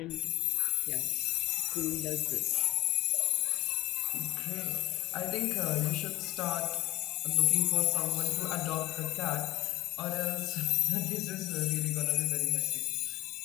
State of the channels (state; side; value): quieter; right; 17.5 dB